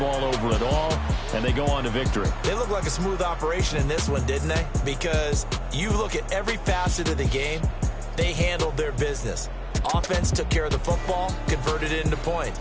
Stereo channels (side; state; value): both; identical; correlation 1.00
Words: over at all, and they go on to victory. They look like a smooth operation in this one, didn't they? Because you look at every facet of the game, they handled their business. Offense took care of the football, converted it into points.